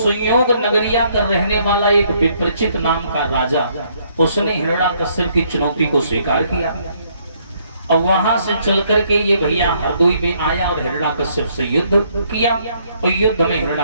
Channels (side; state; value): both; inverted; correlation -0.68